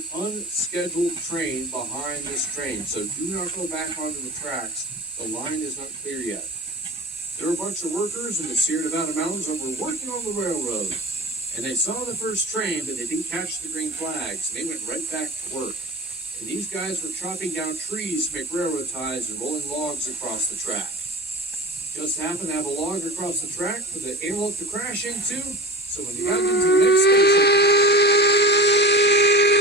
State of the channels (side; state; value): both; normal; correlation 0.31